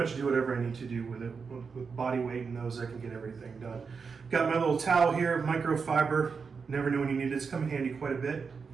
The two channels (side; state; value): left; quieter; 5.4 dB